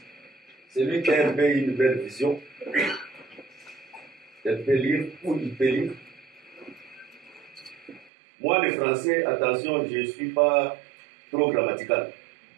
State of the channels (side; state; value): left; drops out; at 8.1 s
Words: Celui qui a une belle vision, il peut lire ou il peut lire. Moi, le français, attention, je ne suis pas trop grammatical.